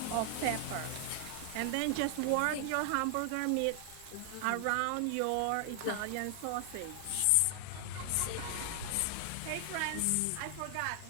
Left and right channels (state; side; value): different; both; correlation 0.00